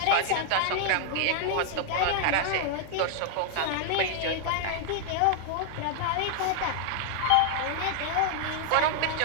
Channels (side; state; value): both; different; correlation 0.00